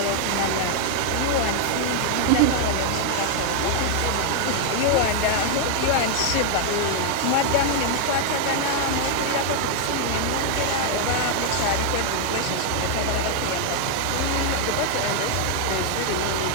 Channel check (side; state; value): both; different; correlation 0.00